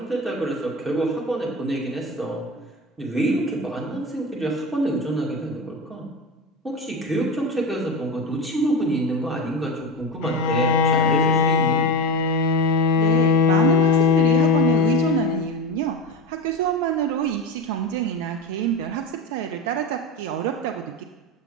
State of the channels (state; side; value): normal; both; correlation 0.23